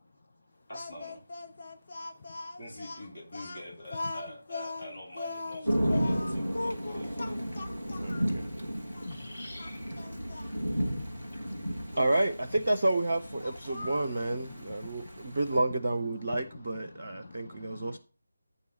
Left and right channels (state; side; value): inverted; both; correlation -0.94